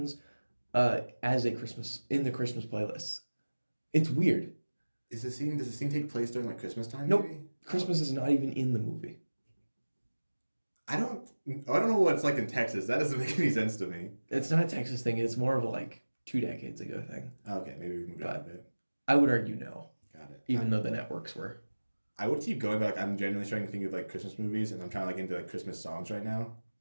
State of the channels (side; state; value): both; inverted; correlation -1.00